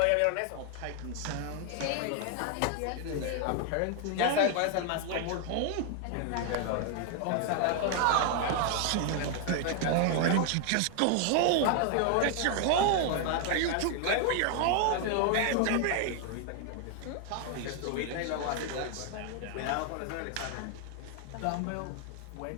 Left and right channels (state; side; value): different; both; correlation 0.00